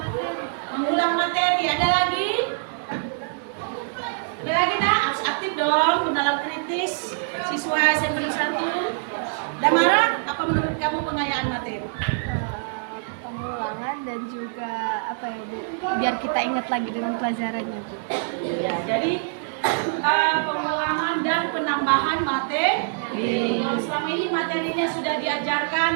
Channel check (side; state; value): left; silent; digital silence